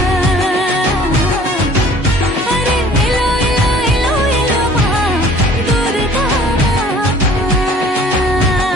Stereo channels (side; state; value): both; normal; correlation 0.51